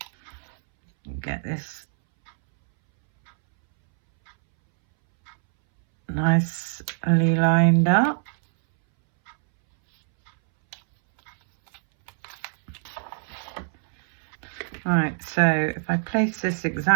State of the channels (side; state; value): left; silent; 62 dB below the other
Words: Get this nicely lined up. Right, so if I place this